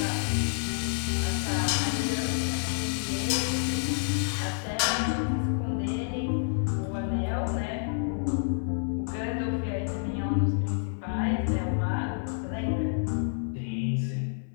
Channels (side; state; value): right; silent; 59 dB below the other